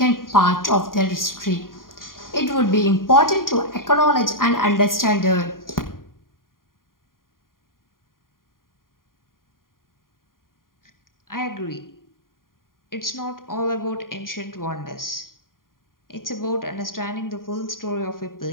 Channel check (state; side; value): late; right; 0.91 ms